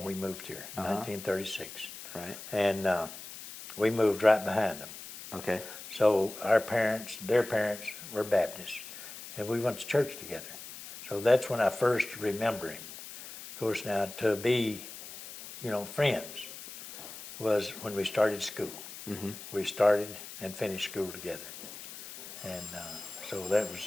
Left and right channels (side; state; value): left; noise; hiss, 13 dB below the sound